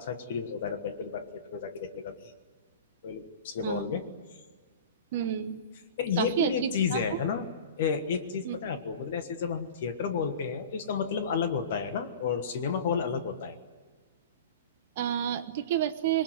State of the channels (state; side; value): inverted; both; correlation -0.34